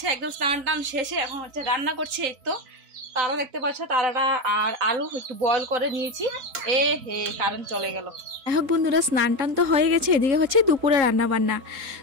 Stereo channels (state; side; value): late; left; 3.7 ms